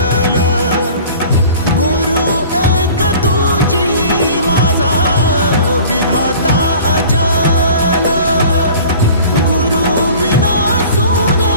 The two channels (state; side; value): inverted; both; correlation -0.44